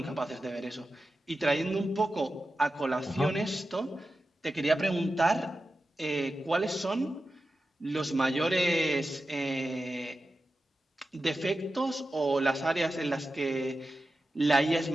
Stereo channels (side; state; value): both; normal; correlation 0.92